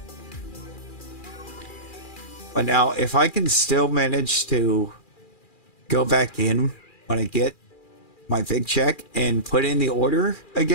But now, if I can still manage to go back in when I get my big check and put in the order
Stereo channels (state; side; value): late; right; 2.4 ms